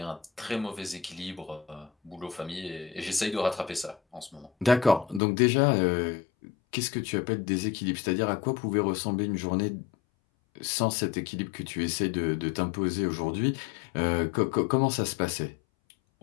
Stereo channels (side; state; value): right; drops out; at 5.2 s